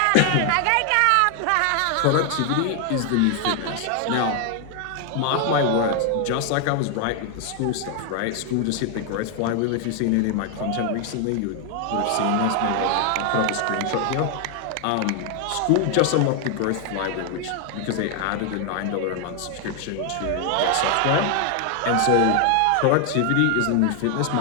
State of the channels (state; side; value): different; both; correlation 0.00